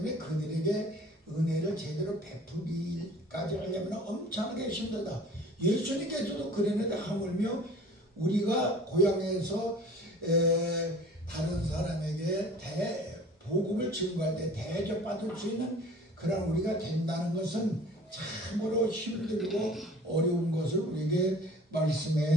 그들에게 은혜를 제대로 베풀기까지 하려면 엄청나게 힘들다. 예수님께서도 그랬는데 하물며 우리가 고향에서 다른 사람에게 복음을 증거할 때 대접받을 수 있는 그런 우리가 된다는 것은 참으로 힘들고 어려운 것을 우리에게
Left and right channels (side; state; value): both; normal; correlation 0.46